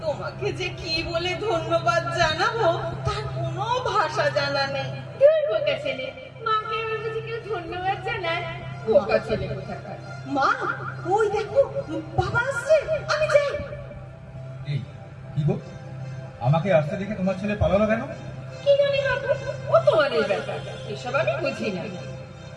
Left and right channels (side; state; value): both; identical; correlation 1.00